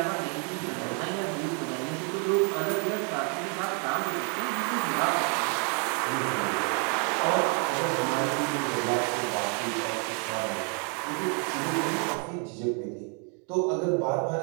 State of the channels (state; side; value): quieter; left; 38.2 dB